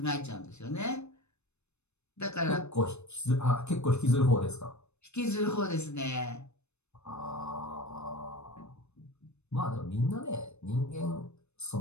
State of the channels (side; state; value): right; late; 0.81 ms